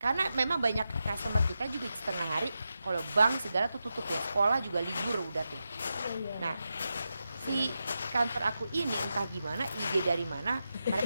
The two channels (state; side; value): inverted; both; correlation -0.89